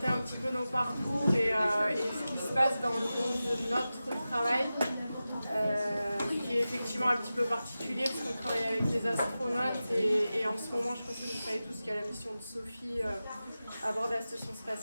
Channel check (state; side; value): inverted; both; correlation -0.94